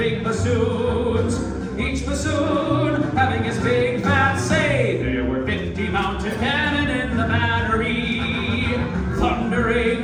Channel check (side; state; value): both; identical; correlation 1.00